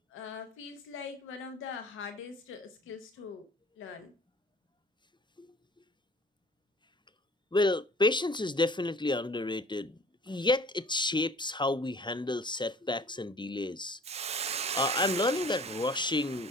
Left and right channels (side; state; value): both; normal; correlation 0.49